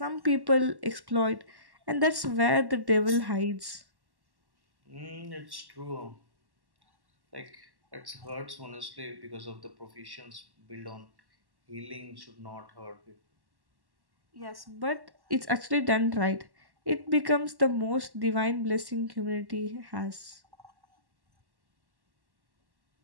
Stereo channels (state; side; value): late; left; 1.1 ms